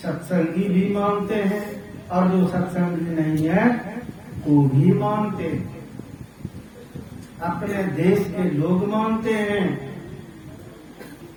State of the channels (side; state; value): both; identical; correlation 1.00